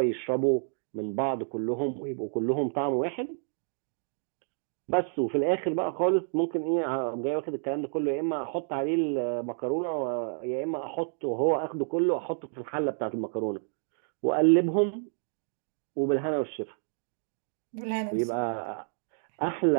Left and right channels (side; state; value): left; silent; digital silence